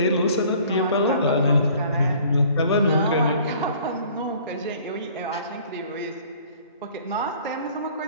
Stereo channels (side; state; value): both; inverted; correlation -0.53